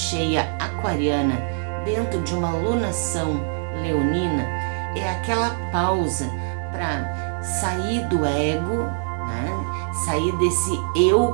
aquariana, dentro de uma lunação leonina, é aquela pausa para sair do ego, né? Sair desse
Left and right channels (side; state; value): left; silent; 62 dB below the other